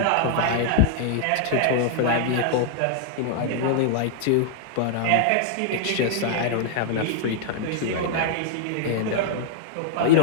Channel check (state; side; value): different; both; correlation 0.00